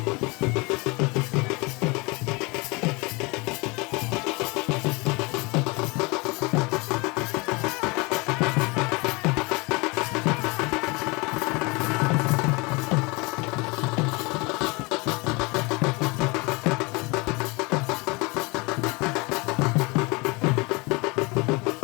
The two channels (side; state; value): right; quieter; 27.1 dB